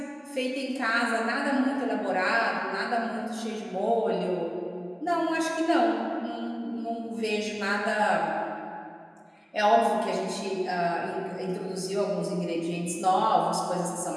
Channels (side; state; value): both; identical; correlation 1.00